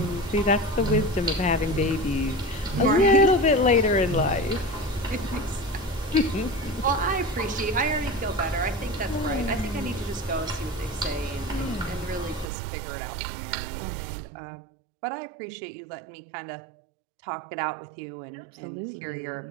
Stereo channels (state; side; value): drops out; left; at 12.5 s